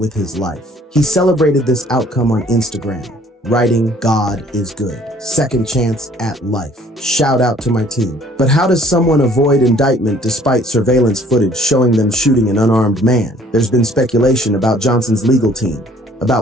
his life. He celebrated this outcome on Instagram, writing, "God is good. Second chance at life. Shout out to my team." But how does someone avoid indictment despite surveillance footage showing them shooting an unarmed man? There's been speculation about Johnson's legal team,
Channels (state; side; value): normal; both; correlation 0.57